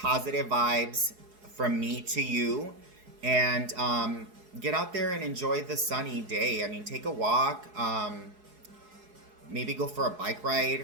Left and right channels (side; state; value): left; late; 4.7 ms